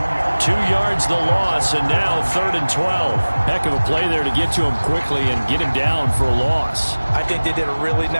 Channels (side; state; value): both; inverted; correlation -1.00